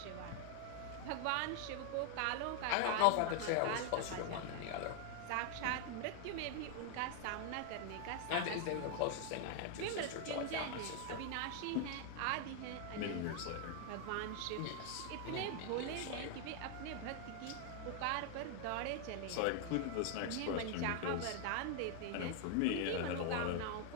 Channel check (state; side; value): different; both; correlation 0.00